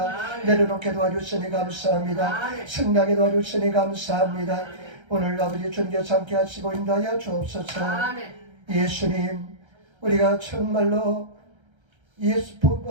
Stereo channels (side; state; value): left; late; 1.3 ms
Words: 아멘. 내려놓게 도와주시니 감사합니다. 아멘. 승리하게 도와주시니 감사합니다. 오늘 아버지 주님께서 함께 하시고 인도하여 주옵소서. 아멘. 예수님, 우리가 정말로